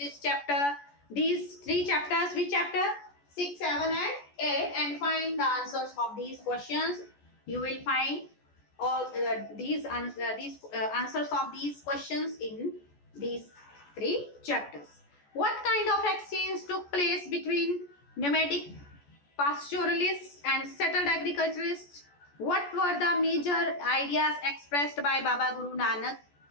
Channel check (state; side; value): late; right; 14 ms